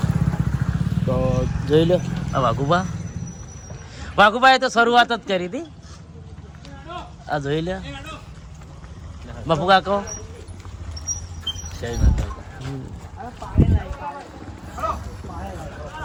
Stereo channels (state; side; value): identical; both; correlation 1.00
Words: તો જોઈ લો. આ વાઘુભાઈએ તો શરૂઆત જ કરી હતી. આ જોઈ લો બાપુ કાકો.